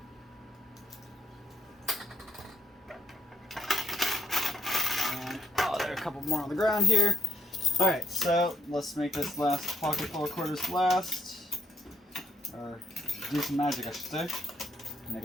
And, oh, there are a couple more on the ground here. Alright, so let's make this last pocket full of quarters last. Or do some magic, I should say. Make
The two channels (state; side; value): normal; both; correlation 0.72